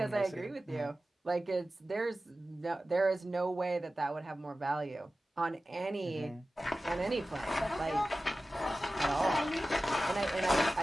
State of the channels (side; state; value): both; normal; correlation 0.95